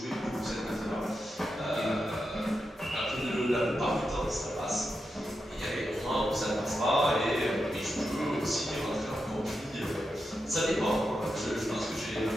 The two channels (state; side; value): normal; both; correlation 0.88